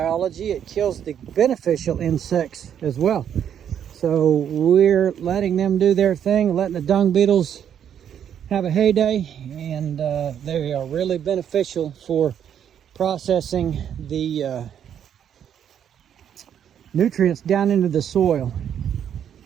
it kills the beneficial insects as well. So we're letting them do their thing, letting the dung beetles have a heyday, and they are really beneficial for processing the nutrients down into the soil.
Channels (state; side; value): quieter; left; 9.1 dB